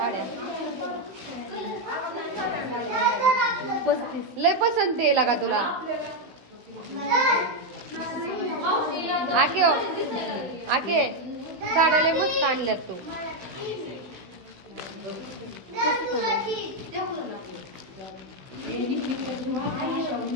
लय पसंत आहे का तुला? आके आके साड्या लय मस्त आणल्यात तू.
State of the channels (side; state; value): left; late; 16 ms